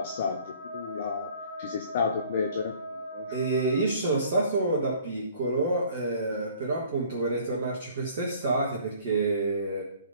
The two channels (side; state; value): both; inverted; correlation -0.53